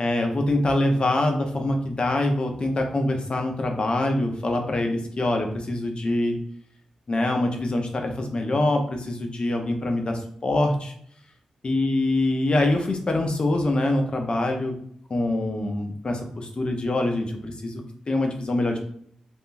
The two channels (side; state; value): both; normal; correlation 0.91